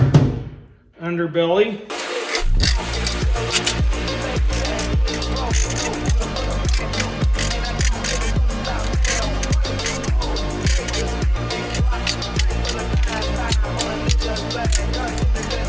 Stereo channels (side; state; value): both; identical; correlation 1.00